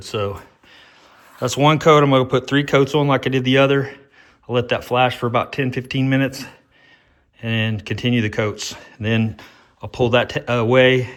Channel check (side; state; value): both; identical; correlation 1.00